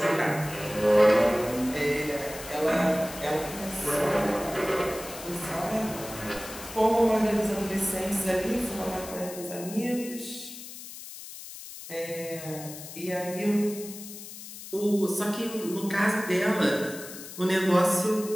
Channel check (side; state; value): left; noise; hiss, 13 dB below the sound